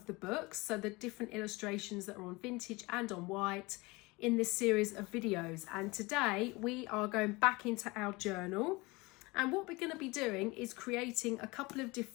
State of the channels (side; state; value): right; quieter; 23.9 dB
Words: the books, so the different illustrations that are on vintage and on white in this series of videos. And today we are going back into our journal, and what we're going to be doing is creating a couple of